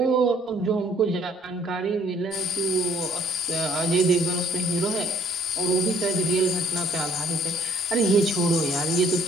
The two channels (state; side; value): normal; both; correlation 0.61